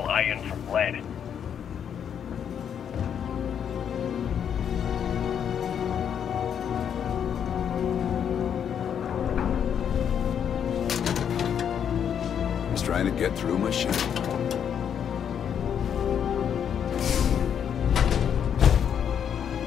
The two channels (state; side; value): quieter; right; 8.4 dB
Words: iron from lead. Just trying to get through my ship.